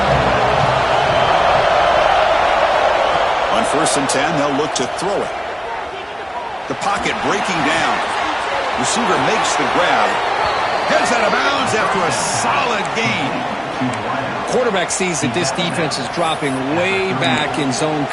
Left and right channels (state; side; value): identical; both; correlation 1.00